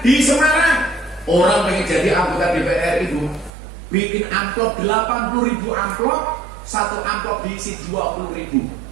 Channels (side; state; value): left; drops out; at 3.5 s